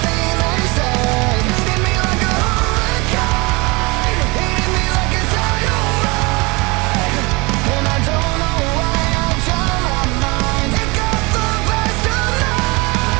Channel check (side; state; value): left; quieter; 26.0 dB